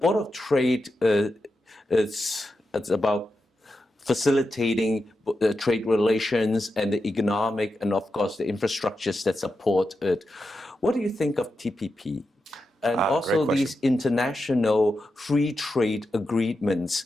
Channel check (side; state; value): both; normal; correlation 0.88